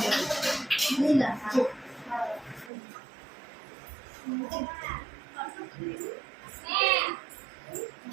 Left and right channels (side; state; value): left; drops out; at 2.7 s